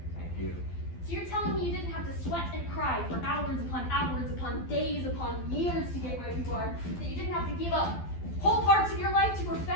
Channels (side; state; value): right; late; 12 ms